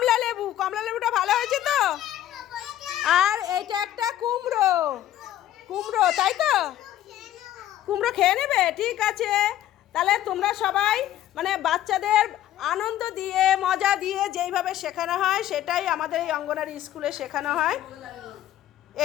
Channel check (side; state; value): right; quieter; 12.7 dB